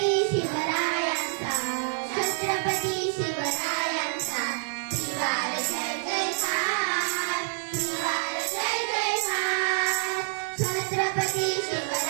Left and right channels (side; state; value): left; silent; digital silence